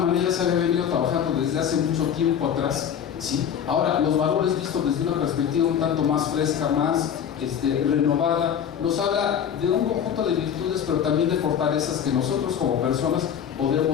se había venido trabajando desde hace mucho tiempo atrás, ¿sí? Ahora, los valores vistos desde una perspectiva un tanto más fresca, más renovada, nos habla de un conjunto de virtudes, pero también de fortalezas que nosotros como personas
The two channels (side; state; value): right; quieter; 8.5 dB